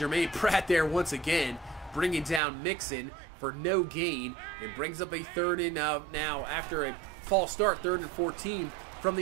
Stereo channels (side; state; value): left; drops out; at 2.4 s